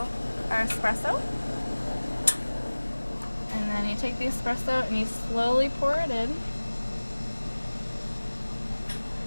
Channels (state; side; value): inverted; both; correlation -1.00